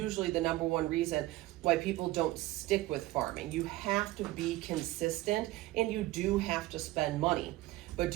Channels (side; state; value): left; quieter; 17.8 dB